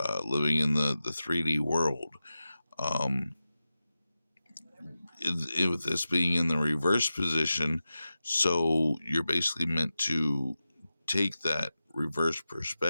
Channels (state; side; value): inverted; both; correlation -0.94